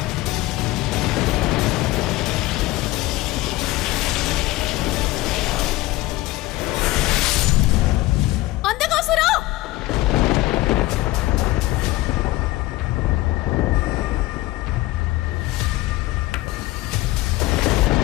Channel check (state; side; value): quieter; right; 18.1 dB